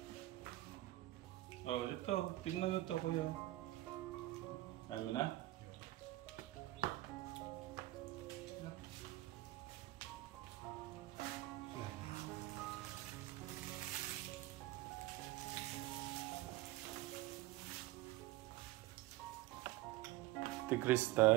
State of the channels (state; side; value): quieter; left; 17.5 dB